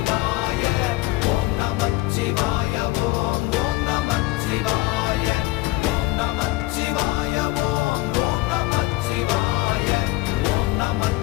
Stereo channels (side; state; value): right; quieter; 19.9 dB